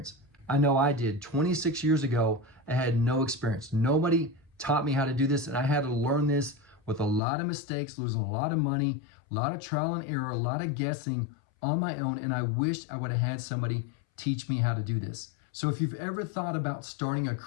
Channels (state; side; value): drops out; right; at 7.2 s